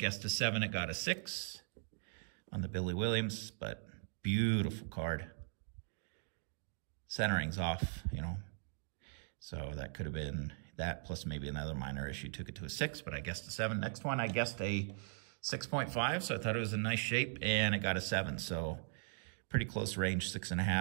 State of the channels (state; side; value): silent; left; digital silence